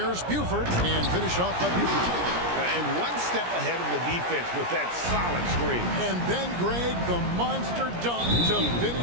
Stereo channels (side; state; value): left; late; 17 ms